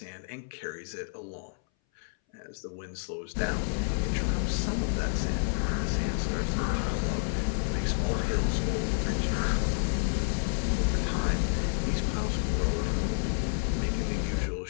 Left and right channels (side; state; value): right; silent; 58 dB below the other